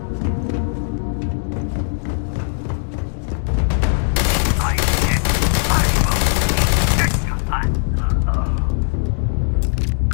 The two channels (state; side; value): silent; right; digital silence